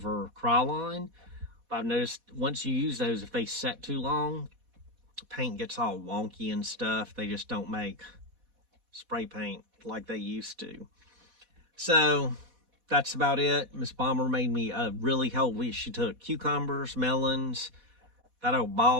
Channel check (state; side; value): late; left; 4.1 ms